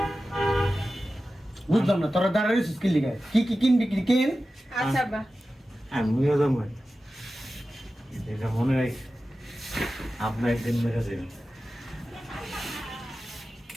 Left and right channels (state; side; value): normal; both; correlation 0.94